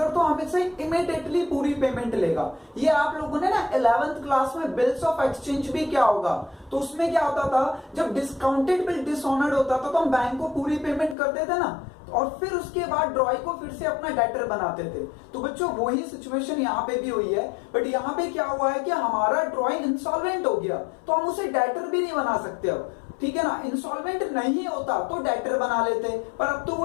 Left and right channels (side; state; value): right; drops out; at 11.2 s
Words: तो हमें से इमीडिएटली पूरी पेमेंट लेगा। ये आप लोगों ने ना 11th क्लास में बिल्स ऑफ एक्सचेंज भी क्या होगा, तो उसमें क्या होता था, जब डिस्काउंटेड बिल डिसऑनर्ड होता था तो हम बैंक को पूरी पेमेंट करते थे ना, और फिर उसके बाद ड्रॉय को फिर से अपना डेटर बनाते थे। तो बच्चों वही सिचुएशन यहाँ पे भी हुई है, बट यहाँ पे क्या हुआ है कि हमारा ड्रॉय इंसॉल्वेंट हो गया, तो हम उसे डेटर भी नहीं बना सकते अब, ठीक है ना। इंसॉल्वेंट नहीं होता तो डेटर बना लेते, पर अब तो